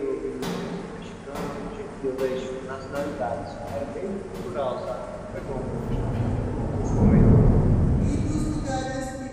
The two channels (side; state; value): both; identical; correlation 1.00